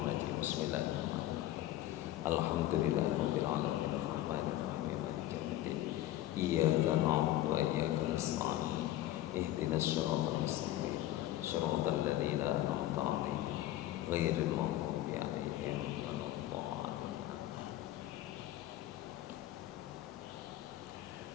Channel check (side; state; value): right; quieter; 14.3 dB